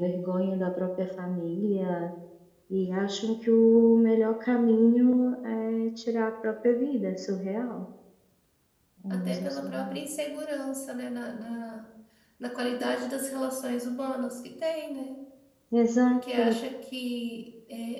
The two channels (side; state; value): both; identical; correlation 1.00